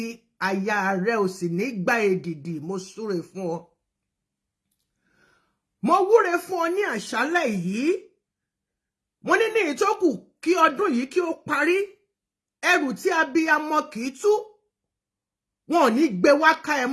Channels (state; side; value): identical; both; correlation 1.00